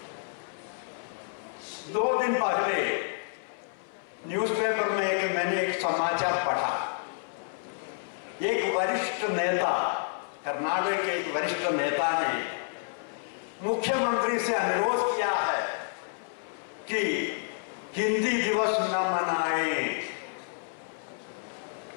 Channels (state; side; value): silent; right; 57 dB below the other